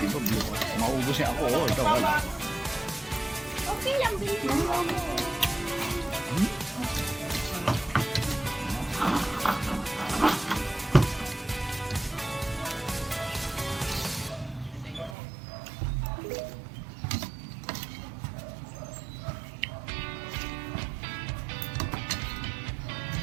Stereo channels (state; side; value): drops out; left; at 15.2 s